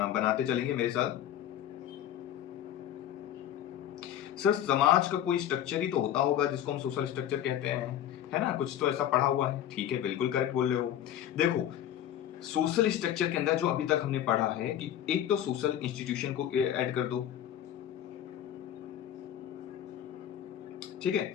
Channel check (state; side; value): quieter; right; 10.9 dB